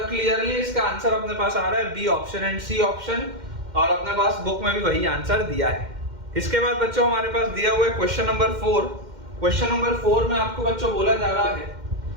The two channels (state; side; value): late; left; 2.1 ms